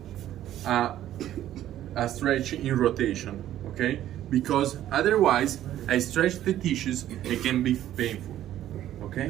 a stretch in rotation, okay? Because otherwise I stretch the tissues, it can be painful,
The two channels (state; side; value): quieter; left; 12.4 dB